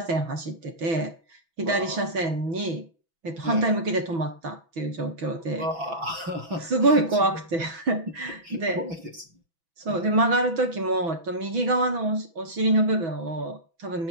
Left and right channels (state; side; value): late; left; 6.0 ms